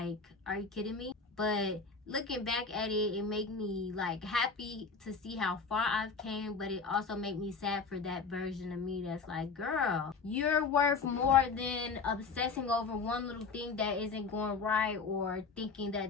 are you kidding me? But looking back at it, it made me like happy to see how far I've came, but it also made me sad for that version of me that's like, girl, you're worth more than obsessing over one little thing that isn't going right, or thinking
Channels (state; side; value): quieter; right; 4.8 dB